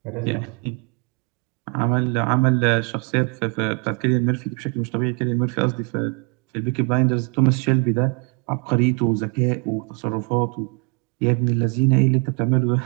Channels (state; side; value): quieter; left; 33.3 dB